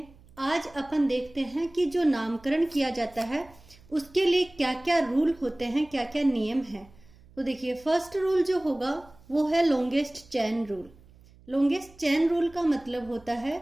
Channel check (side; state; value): right; noise; hum, 26 dB below the sound